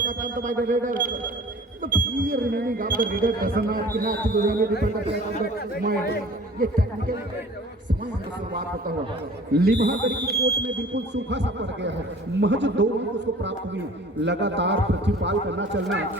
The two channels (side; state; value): both; normal; correlation 0.46